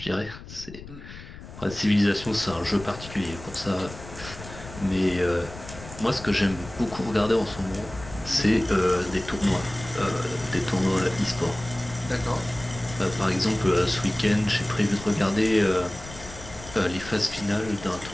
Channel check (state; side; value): noise; left; rumble, 15 dB below the sound